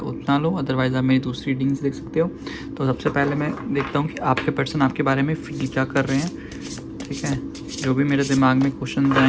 उतना लो, अदरवाइज़ आप मेरी दूसरी रीडिंग्स देख सकते हो। तो सबसे पहले मैं देखता हूँ कि आपके पर्सन आपके बारे में फील क्या कर रहे हैं। ठीक है, जो भी मेरे दिमाग में क्वेश्चन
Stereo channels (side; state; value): both; identical; correlation 1.00